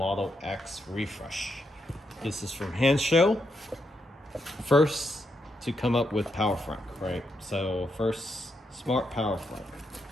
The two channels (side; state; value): both; normal; correlation 0.81